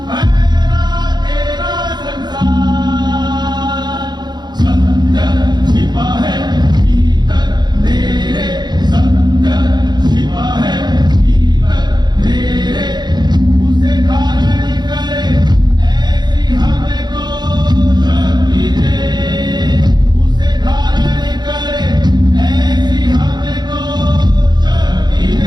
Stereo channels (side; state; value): left; late; 0.21 ms